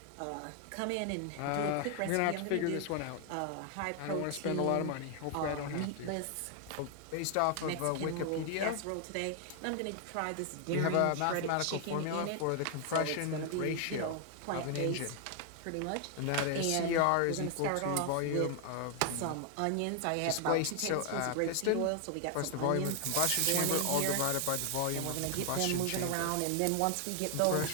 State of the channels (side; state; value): both; different; correlation 0.00